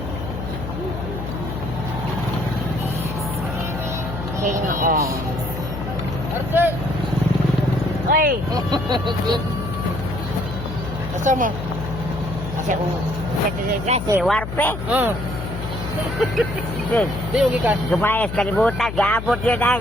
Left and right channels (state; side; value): noise; left; hum, 7 dB below the sound